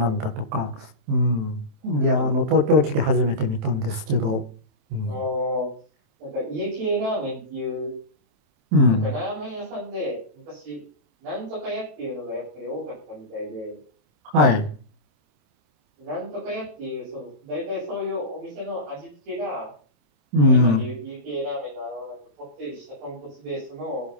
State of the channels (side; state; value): left; late; 27 ms